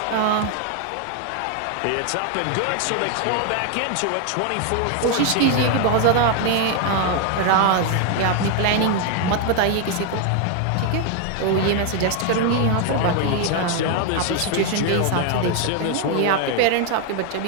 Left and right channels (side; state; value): both; different; correlation 0.01